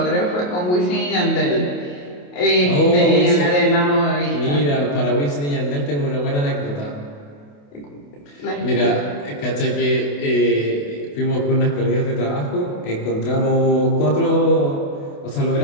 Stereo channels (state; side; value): late; right; 28 ms